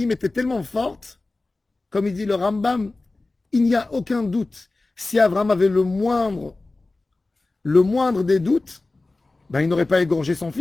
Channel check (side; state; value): right; quieter; 3.2 dB